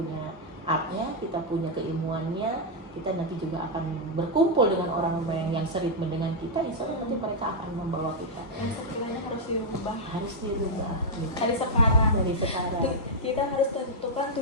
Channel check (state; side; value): normal; both; correlation -0.03